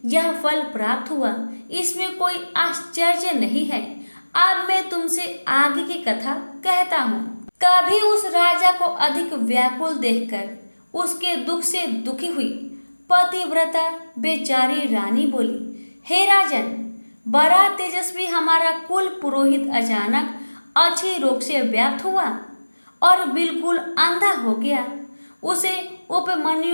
यह फल प्राप्त हुआ, इसमें कोई आश्चर्य नहीं है। अब मैं तुमसे आगे की कथा कहता हूँ। कभी उस राजा को अधिक व्याकुल देखकर उसके दुख से दुखी हुई पतिव्रता बेचारी रानी बोली, हे राजन, बड़ा तेजस्वी हमारा कुल पुरोहित अचानक अच्छी रोग से व्याप्त हुआ और बिल्कुल अंधा हो गया। उसे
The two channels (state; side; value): inverted; both; correlation -1.00